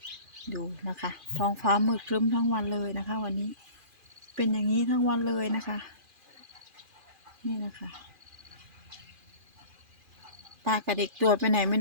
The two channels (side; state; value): left; late; 2.4 ms